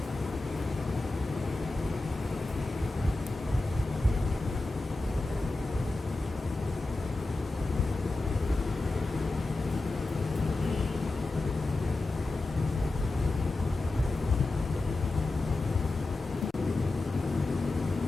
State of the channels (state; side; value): quieter; right; 3.1 dB